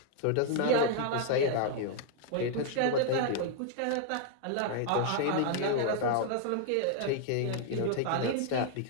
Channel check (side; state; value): both; different; correlation 0.00